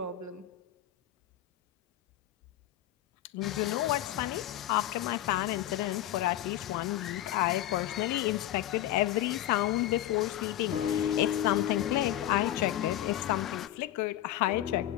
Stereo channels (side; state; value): right; quieter; 13.2 dB